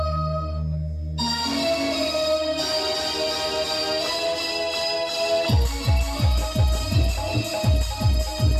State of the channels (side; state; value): both; identical; correlation 1.00